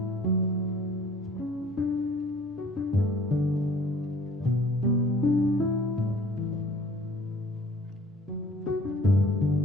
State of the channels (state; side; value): normal; both; correlation 0.52